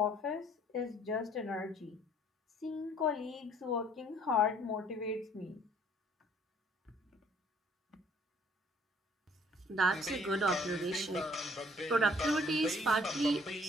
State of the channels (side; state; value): both; normal; correlation 0.60